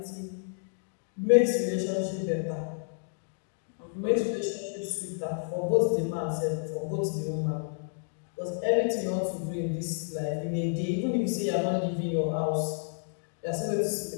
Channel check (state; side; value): silent; right; digital silence